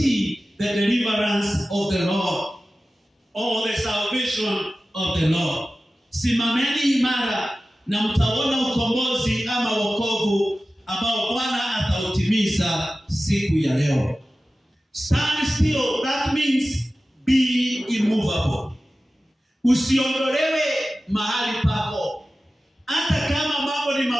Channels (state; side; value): normal; both; correlation 0.95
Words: the deliverance of the Lord, or the salvation of the Lord. Simameni imara na mtaona ukombozi ama wokovu ambao Bwana atautimiza siku ya leo. Stand still, that means be immovable. Usiondolewe mahali pako. Hata kama mambo ni